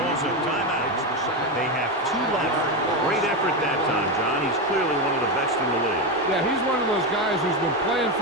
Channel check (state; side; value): normal; both; correlation 0.13